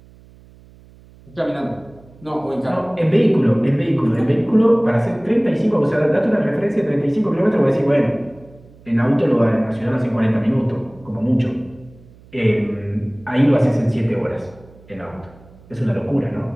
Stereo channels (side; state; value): right; noise; hum, 25 dB below the sound